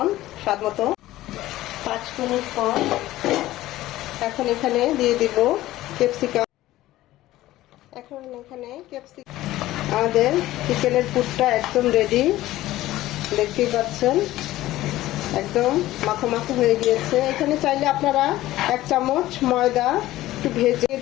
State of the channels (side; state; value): right; quieter; 15.8 dB